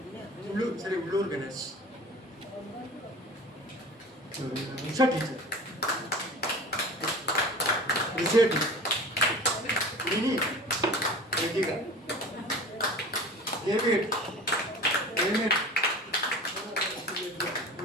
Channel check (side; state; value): both; normal; correlation 0.38